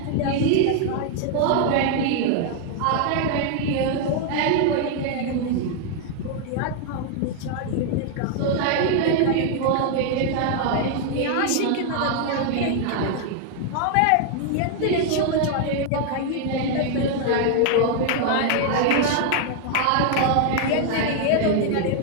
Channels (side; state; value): both; different; correlation 0.00